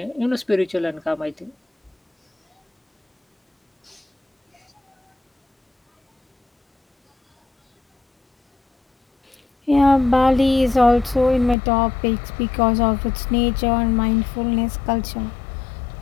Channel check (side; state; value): right; drops out; at 11.6 s